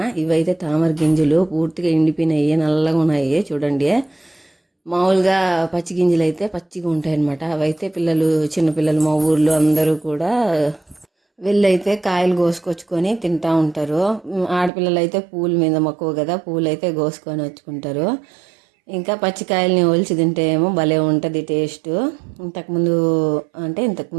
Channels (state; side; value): drops out; left; at 14.7 s